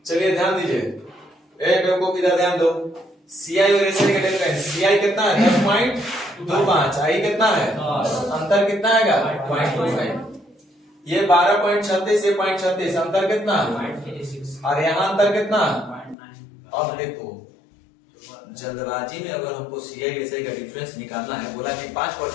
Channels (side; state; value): right; drops out; at 16.2 s